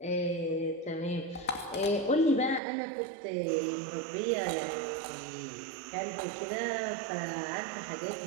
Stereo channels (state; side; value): drops out; left; at 2.6 s